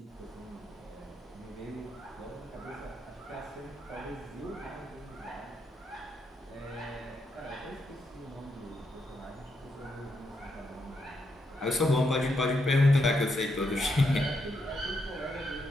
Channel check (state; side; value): normal; both; correlation 0.80